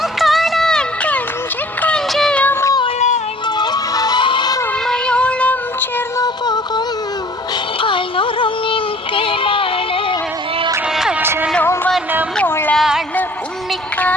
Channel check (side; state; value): both; normal; correlation 0.52